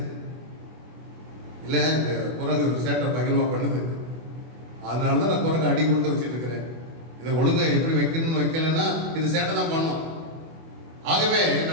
இல்ல இந்த குரங்கு சேட்டை பகிர்வா பண்ணுது, அதனாலதான் நான் குரங்கு அடி கொடுத்து வச்சுட்டு இருக்கிறேன். இதை ஒழுங்கா எப்படி வைக்கணும்னு வைக்கலன்னா இது சேட்டை தான் பண்ணும். ஆகவே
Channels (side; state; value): left; late; 24 ms